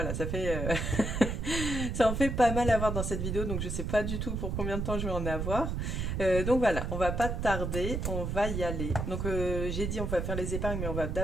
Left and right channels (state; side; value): noise; right; rumble, 2 dB below the sound